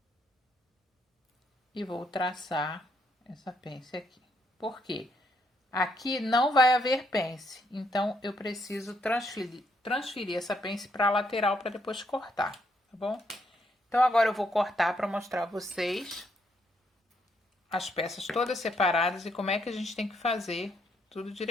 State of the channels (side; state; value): both; normal; correlation 0.74